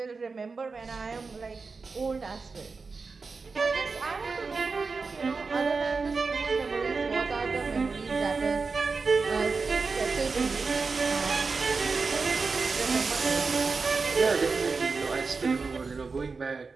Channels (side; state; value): left; quieter; 4.4 dB